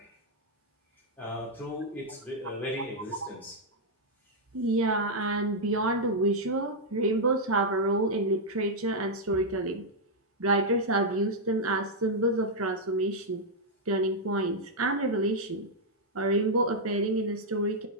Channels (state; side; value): normal; both; correlation -0.04